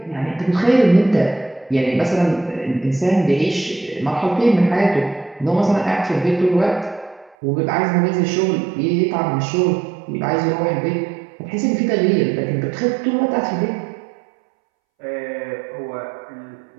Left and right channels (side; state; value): left; drops out; at 7.4 s